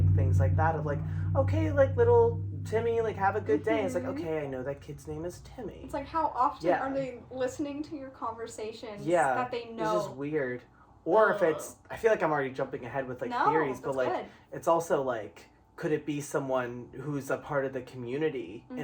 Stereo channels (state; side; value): identical; both; correlation 1.00